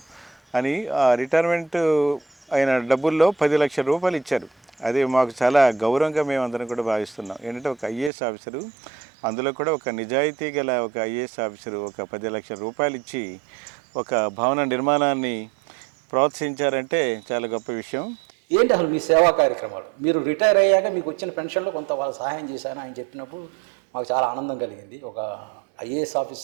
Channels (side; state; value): left; drops out; at 8.1 s